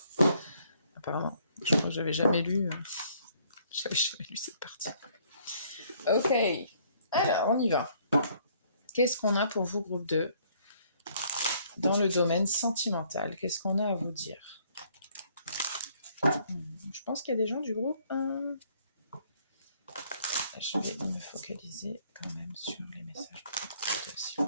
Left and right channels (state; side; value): inverted; both; correlation -0.64